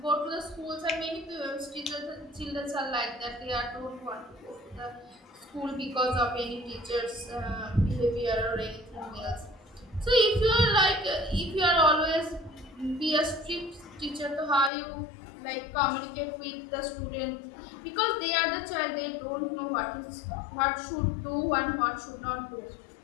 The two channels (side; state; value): right; drops out; at 14.7 s